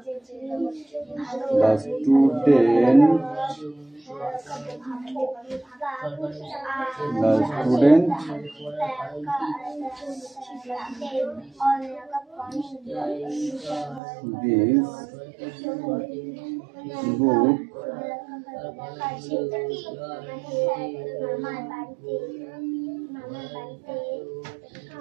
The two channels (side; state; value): left; drops out; at 14.0 s